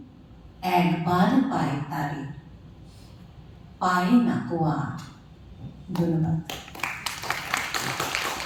একবার পায় তারে, পায় না কো আর। ধন্যবাদ।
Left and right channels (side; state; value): both; identical; correlation 1.00